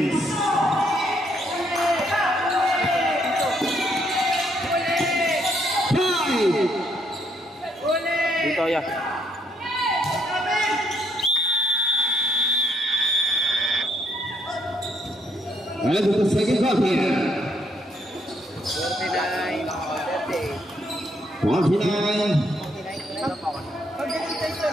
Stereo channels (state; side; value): normal; both; correlation 0.72